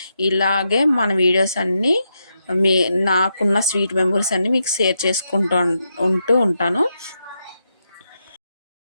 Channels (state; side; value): inverted; both; correlation -0.84